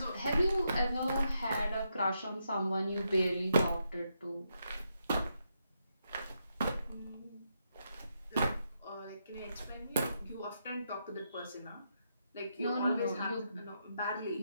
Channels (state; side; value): inverted; both; correlation -0.81